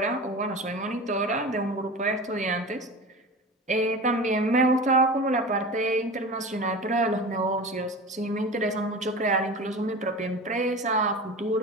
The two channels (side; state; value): both; normal; correlation 0.32